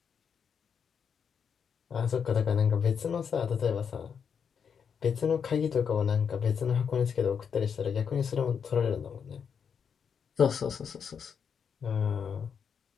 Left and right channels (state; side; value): quieter; right; 6.9 dB